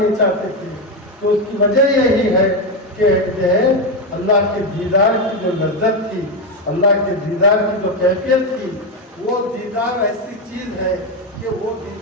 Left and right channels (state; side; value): normal; both; correlation 0.09